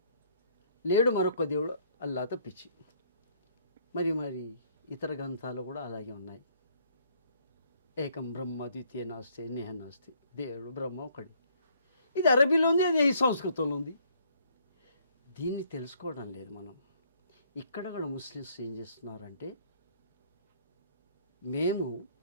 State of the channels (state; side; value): inverted; both; correlation -0.64